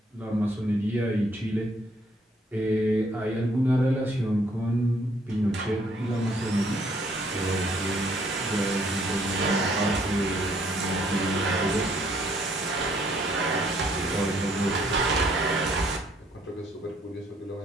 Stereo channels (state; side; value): normal; both; correlation 0.66